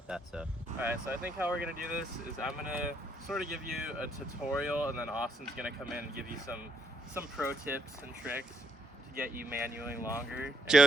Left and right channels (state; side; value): normal; both; correlation 0.73